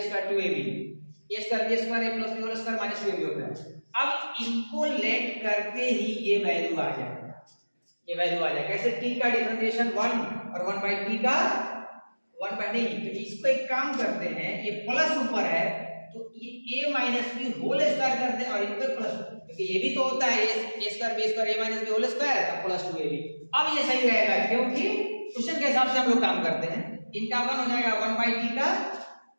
square 2ab, a square b square a plus b whole square minus 2ab होता है। अब इनको लेट करते ही ये वैल्यू आ जाएगा, ये वैल्यू आ जाएगा। कैसे, t का डिफरेंशिएशन 1 और 1 बाई t का 1 बाई नहीं, तो इसको एक काम करते हैं, ये प्लस ऊपर है तो ये a minus b whole square करते हैं और इन पे प्लस, क्योंकि ये भी तो होता है a square b square a minus b whole square तो प्लस 2ab। अब ये सही रहेगा क्योंकि क्वेश्चन के हिसाब से हम लोग काम करते हैं। इनका 1 हो जाएगा 1 बाई टी का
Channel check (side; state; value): both; inverted; correlation -1.00